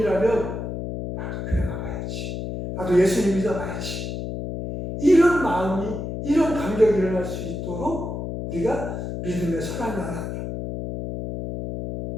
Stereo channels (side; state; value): left; noise; hum, 5 dB below the sound